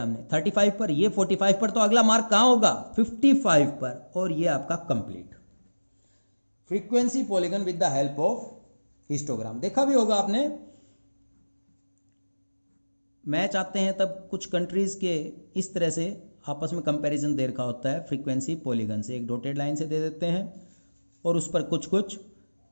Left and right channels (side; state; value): both; inverted; correlation -1.00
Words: हमने? 35 पर, ये 45 पर, तो अगला मार्क कहाँ होगा? 55 पर, और ये आपका complete frequency polygon with the help of histogram. देखा भी होगा आपने, मैच आते हैं तब कुछ कंट्रीज के इस तरह से आपस में कंपैरिजन दे रखा होता है फ्रीक्वेंसी पॉलीगन से, एक डॉटेड लाइन से दे देते हैं और उस पर कुछ कुछ